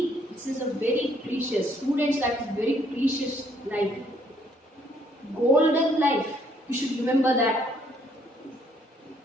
this is a very precious, students' life is very precious life. Golden life. You should remember that.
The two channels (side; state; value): both; normal; correlation 0.67